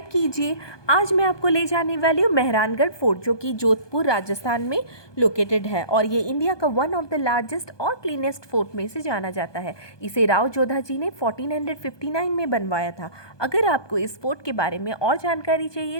कीजिए। आज मैं आपको ले जाने वाली हूँ मेहरानगढ़ फोर्ट, जो कि जोधपुर राजस्थान में लोकेटेड है और ये इंडिया का वन ऑफ द लार्जेस्ट और क्लीनेस्ट फोर्ट में से जाना जाता है। इसे राव जोधा जी ने 1459 में बनवाया था। अगर आपको इस फोर्ट के बारे में और जानकारी चाहिए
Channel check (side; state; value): right; late; 1.2 ms